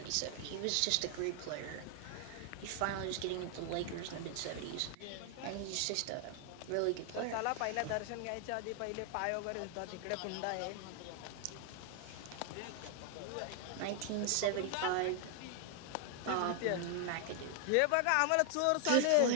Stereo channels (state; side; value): different; both; correlation 0.00